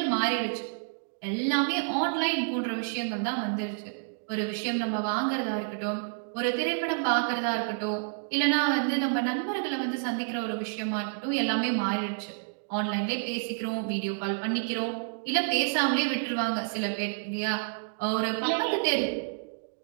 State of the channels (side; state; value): left; silent; digital silence